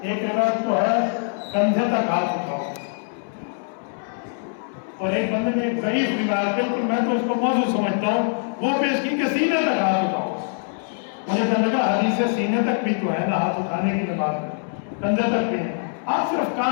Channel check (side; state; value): right; silent; 61 dB below the other